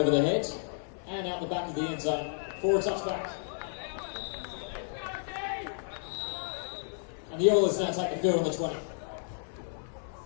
the head and out the back of the end zone for a touchback. And the Oilers now take the field on the 20.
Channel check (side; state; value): right; silent; 56 dB below the other